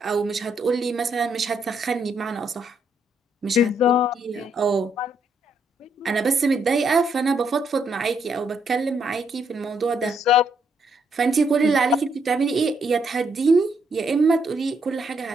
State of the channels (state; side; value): normal; both; correlation 0.74